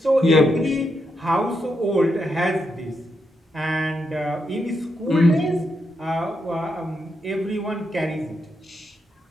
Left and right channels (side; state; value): both; normal; correlation 0.82